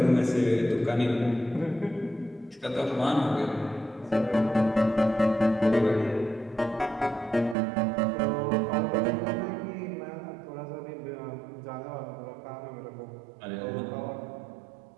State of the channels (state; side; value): drops out; left; at 7.6 s